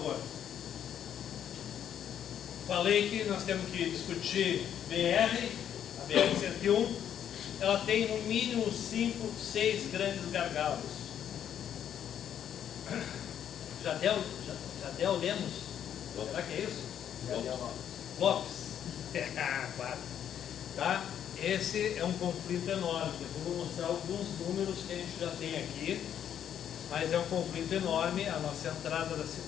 Falei que nós temos que discutir BR, a BR-101. Ela tem no mínimo 5, 6 grandes gargalos. Jadel Lemos? Será que é isso? Lopes. Claro. Tá? Esse é um conflito enorme. Eu vou mostrar alguns números que a gente já tem aqui, mas é um conflito enorme a nossa entrada da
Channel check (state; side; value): quieter; right; 9.5 dB